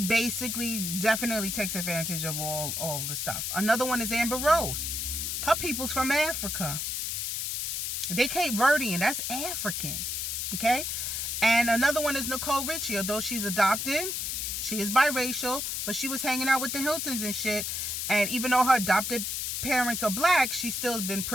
basically definitely takes advantage of all the stuff. Another one is Amber Rose. Her people's from Africa. They Cape Verdean. That's African. Okay? And another one is Nicole Richie. Although she's adopted, she is biracial, but she was hanging out with the Hiltons and shit. And even though her adopted parents are black, she still has been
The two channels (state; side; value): noise; left; hiss, 2 dB below the sound